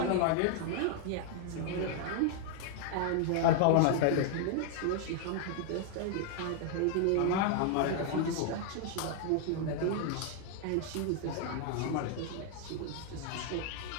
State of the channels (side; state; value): both; different; correlation 0.00